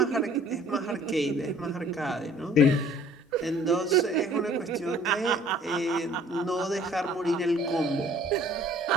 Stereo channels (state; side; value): normal; both; correlation 0.54